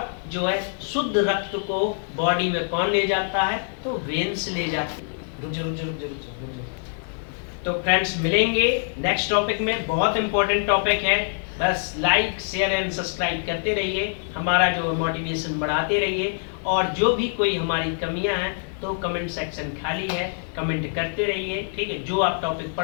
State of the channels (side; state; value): right; silent; digital silence